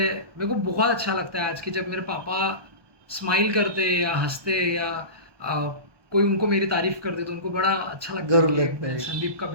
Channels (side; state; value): left; late; 1.2 ms